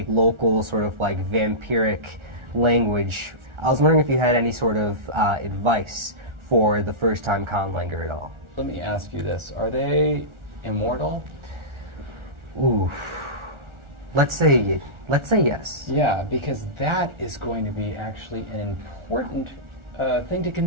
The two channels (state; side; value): late; left; 1.4 ms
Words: local sort of like vampiric language. I was wondering if you had any sort of advice for the first-time conlanger at all. Let me ask you this: are they immortal? Ooh, let's say yes. Yeah, because that is going to be actually an important thing to